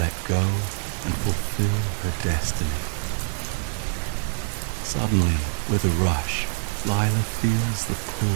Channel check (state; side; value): silent; left; digital silence